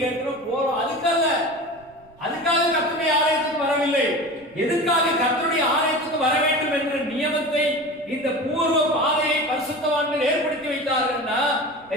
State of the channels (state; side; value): noise; right; rumble, 28 dB below the sound